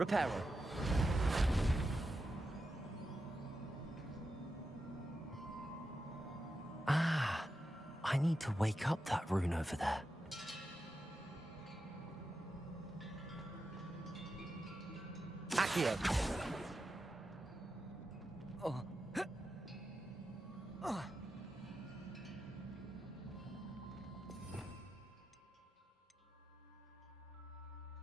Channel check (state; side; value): normal; both; correlation 0.89